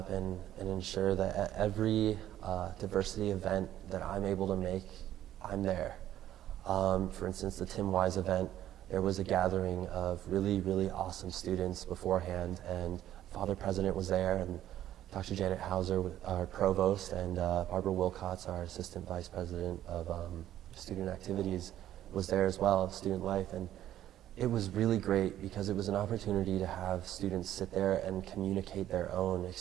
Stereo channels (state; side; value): quieter; left; 12.3 dB